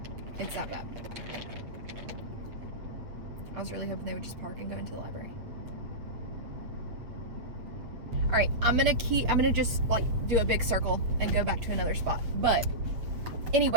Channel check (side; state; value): left; late; 8.0 ms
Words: It's that bad. I was really hoping they would just park and go into the library. All right, I'm gonna just like do a big circle and go back to another spot. But